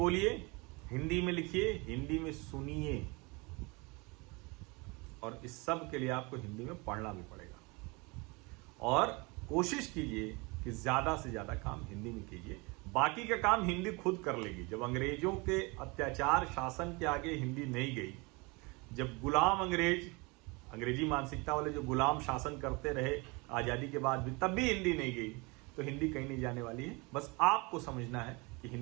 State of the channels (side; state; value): left; quieter; 27.3 dB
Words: हिंदी में लिखिए, हिंदी में सुनिए, और इस सब के लिए आपको हिंदी में पढ़ना भी पड़ेगा। और कोशिश कीजिए कि ज्यादा से ज्यादा काम हिंदी में कीजिए, बाकी का काम हिंदी खुद कर लेगी। जब अंग्रेजों के अत्याचार शासन के आगे हिंदी नहीं गई, जब गुलाम अंग्रेजी मानसिकता वाले जो गुलाम शासन करते रहे आजादी के बाद भी, तब भी हिंदी नहीं गई, तो हिंदी कहीं नहीं जाने वाली है। बस आपको समझना है कि